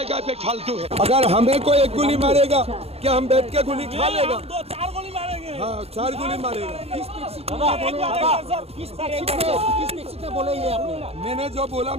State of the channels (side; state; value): left; late; 0.29 ms